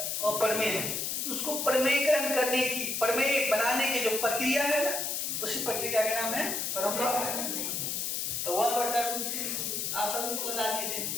अपरमेय है तो उसको प्रमेयकरण करने की, प्रमेय बनाने की जो प्रक्रिया है ना, उसी प्रक्रिया का नाम है हरों का। तो 1/√3 आप सभी को बता दिए थे,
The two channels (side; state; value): left; noise; hiss, 1 dB below the sound